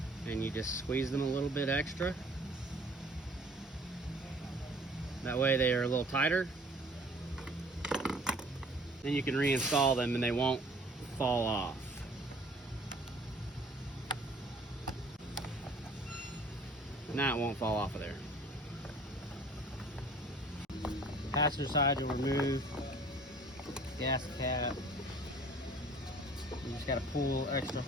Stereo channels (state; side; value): normal; both; correlation 0.51